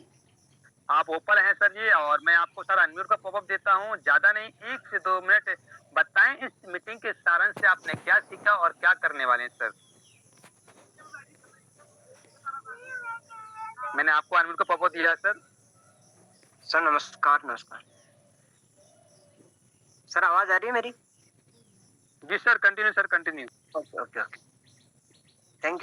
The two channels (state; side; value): identical; both; correlation 1.00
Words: आप ओपन हैं सर जी, और मैं आपको सर अनम्यूट का पॉपअप देता हूं, ज्यादा नहीं 1 से 2 मिनट बताएं इस मीटिंग के सारांश से आपने क्या सीखा और क्या करने वाले हैं सर। मैंने आपको अनम्यूट का पॉपअप दिया है सर। सर नमस्कार। नमस्कार सर, आवाज आ रही है मेरी? जी sir, continue sir, continue. Okay okay okay,